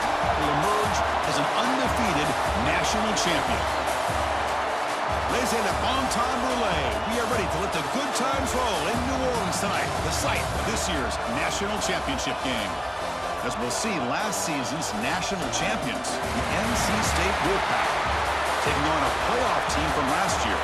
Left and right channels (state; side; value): identical; both; correlation 1.00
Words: will emerge as an undefeated national champion. Ladies and gentlemen, bon temps roulette. We are ready to let the good times roll in New Orleans tonight, the site of this year's national championship game. As we'll see, last season's national champions, the NC State Wolfpack, taking on a playoff team from last year,